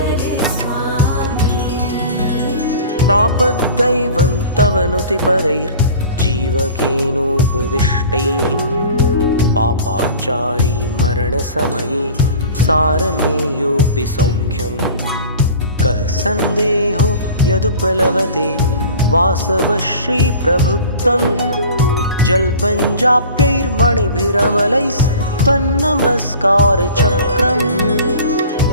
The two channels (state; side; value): inverted; both; correlation -0.41